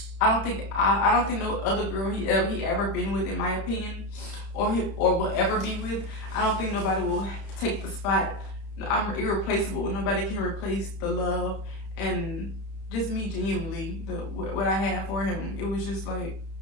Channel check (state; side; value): late; right; 30 ms